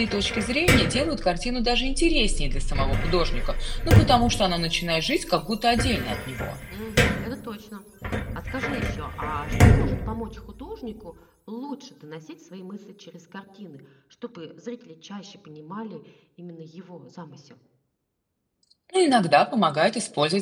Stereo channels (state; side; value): identical; both; correlation 1.00